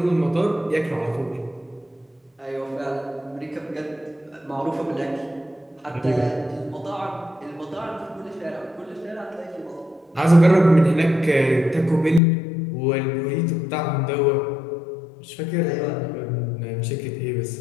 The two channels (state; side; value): drops out; right; at 12.2 s